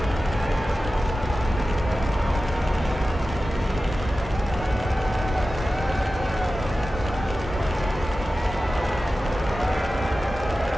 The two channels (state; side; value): normal; both; correlation 0.94